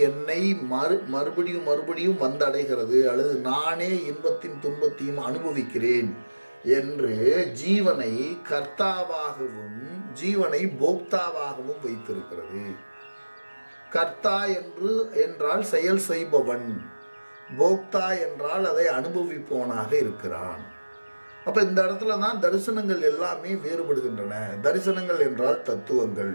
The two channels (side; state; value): both; inverted; correlation -1.00